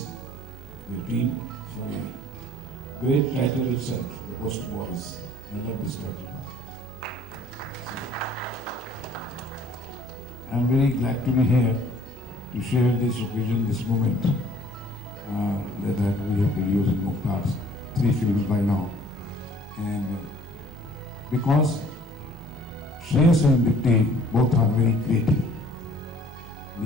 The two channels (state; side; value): normal; both; correlation 0.55